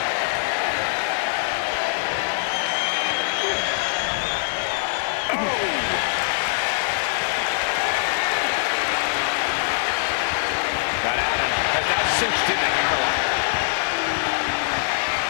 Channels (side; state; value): right; silent; digital silence